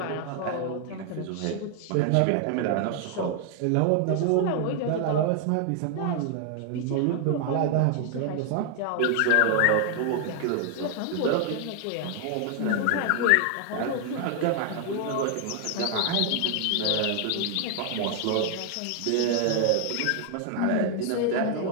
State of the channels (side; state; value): both; different; correlation 0.00